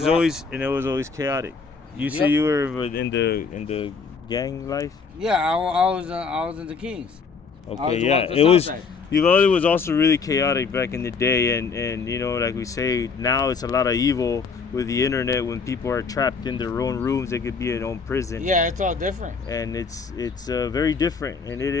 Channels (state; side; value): quieter; right; 5.1 dB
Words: was always chaotic. You say you were in the gang life? Yeah, I was in the Kings. Okay, yeah. It was Uvalde was also really chaotic back in the day, and you know, like we say, now it's a lot of evil with the internet. When people are trapped in their own rooms, they could be in their own prison. Yeah, it's all different. And it's very different, and it